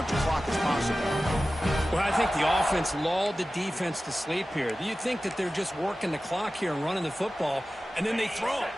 clock as possible. Well, I think the offense lulled the defense to sleep here. You think that they're just working the clock here and running the football, and then they throw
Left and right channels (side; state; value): both; normal; correlation 0.95